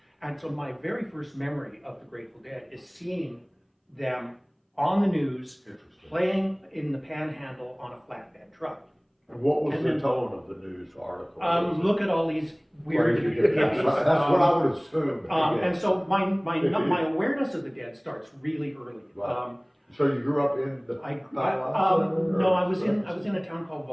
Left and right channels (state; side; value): identical; both; correlation 1.00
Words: And so my very first memory of the Grateful Dead is seeing them on the news, playing in the Panhandle on a flatbed truck. And what was the tone of the news article? Look at all these weird hippies. That's what I would assume. And so my awareness of the Dead starts really early. So you grew up in the no, I was in a town called